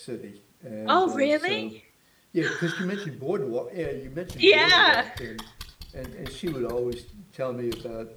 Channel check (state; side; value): identical; both; correlation 1.00